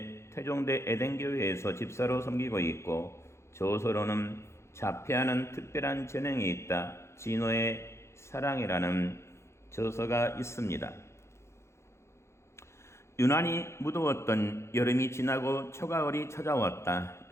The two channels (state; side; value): late; right; 0.13 ms